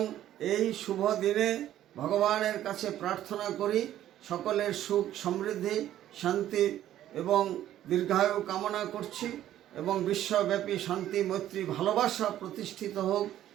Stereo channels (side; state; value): left; quieter; 12.3 dB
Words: এই শুভ দিনে ভগবানের কাছে প্রার্থনা করি সকলের সুখ সমৃদ্ধি শান্তি এবং দীর্ঘায়ু কামনা করছি এবং বিশ্বব্যাপী শান্তি মৈত্রী ভালোবাসা প্রতিষ্ঠিত হোক।